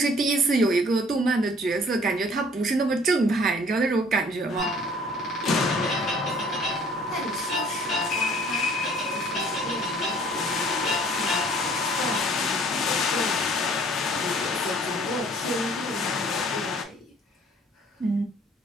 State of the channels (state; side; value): normal; both; correlation 0.55